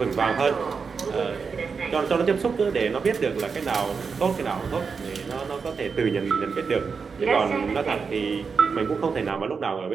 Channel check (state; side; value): quieter; left; 5.4 dB